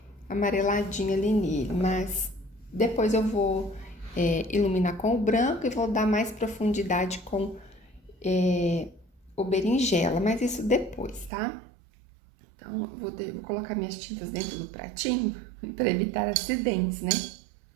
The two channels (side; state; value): left; drops out; at 11.3 s